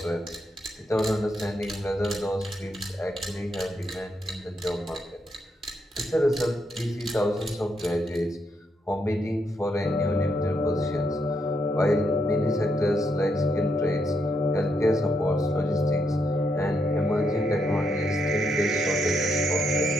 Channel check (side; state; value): both; normal; correlation 0.78